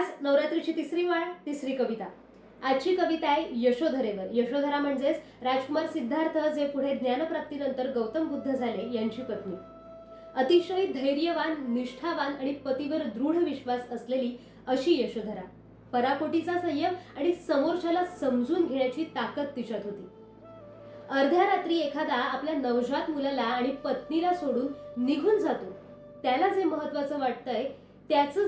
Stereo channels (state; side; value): identical; both; correlation 1.00